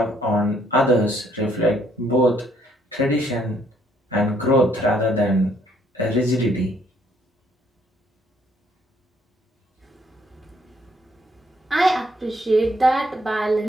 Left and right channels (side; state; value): both; normal; correlation 0.67